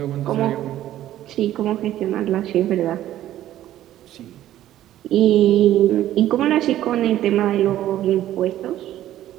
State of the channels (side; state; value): left; quieter; 13.0 dB